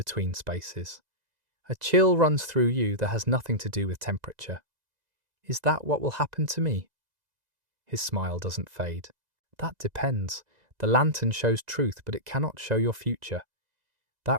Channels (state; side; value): late; left; 2.0 ms